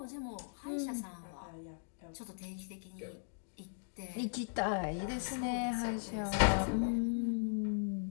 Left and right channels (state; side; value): silent; right; digital silence